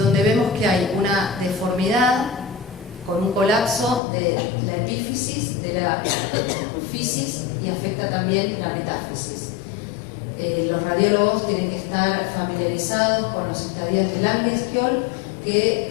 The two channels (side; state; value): right; drops out; at 4.0 s